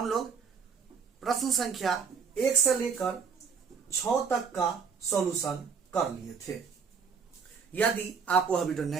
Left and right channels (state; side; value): quieter; left; 6.0 dB